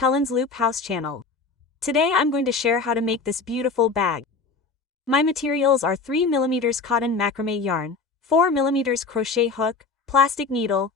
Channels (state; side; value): quieter; right; 4.3 dB